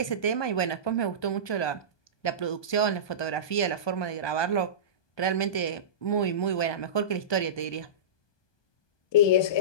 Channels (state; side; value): late; right; 1.2 ms